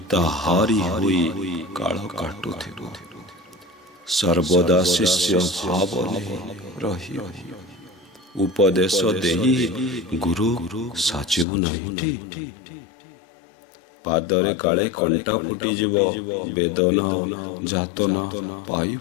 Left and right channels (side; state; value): right; drops out; at 11.5 s